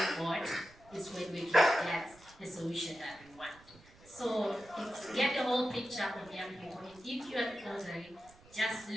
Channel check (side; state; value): right; noise; rumble, 24 dB below the sound